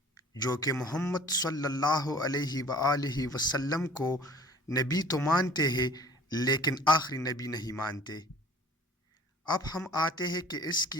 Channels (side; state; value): both; normal; correlation 0.50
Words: جو کہ محمد صلی اللہ علیہ وآلہ وسلم کو نبی تو مانتے ہیں لیکن آخری نبی نہیں مانتے۔ اب ہم آتے ہیں کہ اس